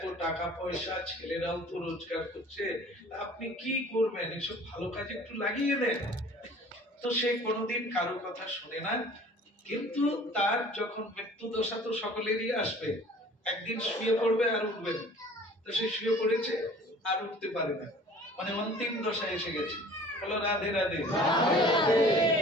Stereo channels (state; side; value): normal; both; correlation 0.48